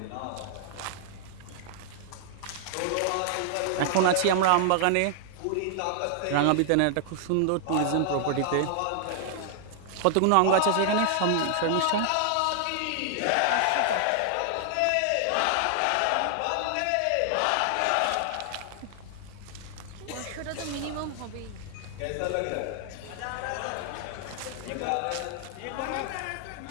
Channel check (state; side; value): different; both; correlation 0.00